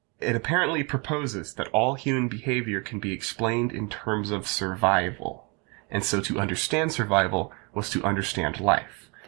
it apparently proposes that all human behavior can be explained in terms of survival. And so to understand survival was to understand life.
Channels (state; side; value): quieter; left; 31.2 dB